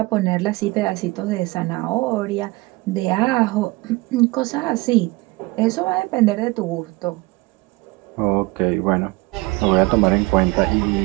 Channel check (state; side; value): quieter; left; 22.8 dB